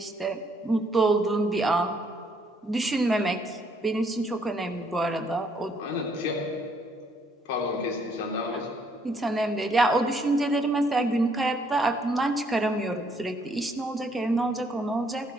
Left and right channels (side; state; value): both; normal; correlation 0.68